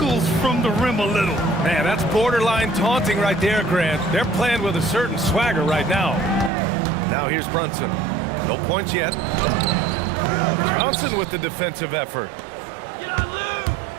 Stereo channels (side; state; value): left; drops out; at 6.5 s